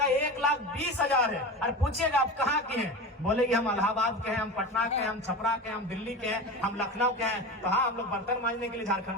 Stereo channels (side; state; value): both; normal; correlation 0.28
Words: 1,20,000 है। अरे पूछिएगा आप कहाँ के हैं, बोलेगी हम इलाहाबाद के हैं, हम पटना के हैं, हम छपरा के हैं, हम दिल्ली के हैं, हम लखनऊ के हैं। तो हाँ, हम लोग बर्तन मांजने के लिए